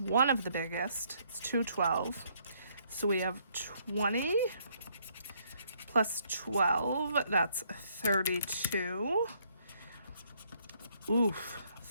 of the biggest. It's 212. So we have 20 plus 12. That's 32. Oof,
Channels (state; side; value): inverted; both; correlation -0.68